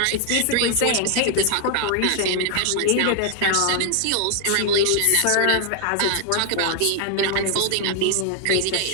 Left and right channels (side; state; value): both; different; correlation 0.00